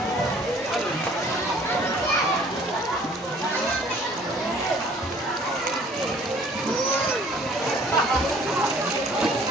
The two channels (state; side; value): normal; both; correlation 0.55